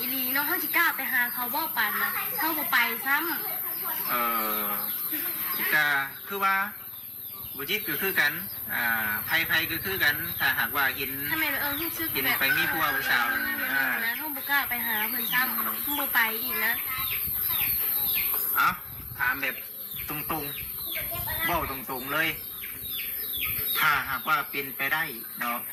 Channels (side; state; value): both; normal; correlation 0.98